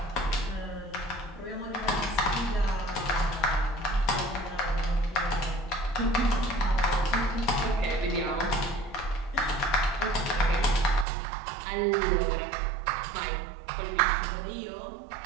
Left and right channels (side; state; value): left; drops out; at 11.1 s